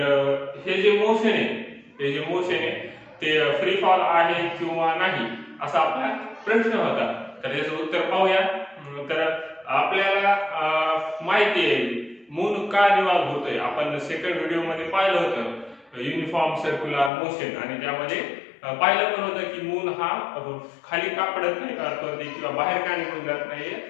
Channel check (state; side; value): drops out; right; at 17.1 s